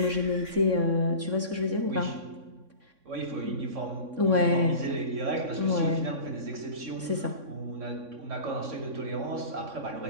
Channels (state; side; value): late; left; 3.6 ms